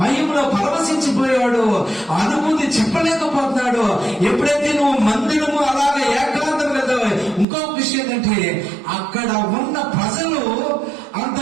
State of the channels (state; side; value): drops out; left; at 7.5 s